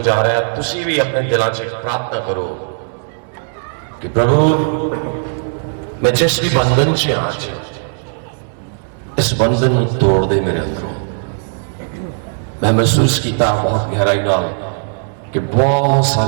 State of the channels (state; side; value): silent; left; digital silence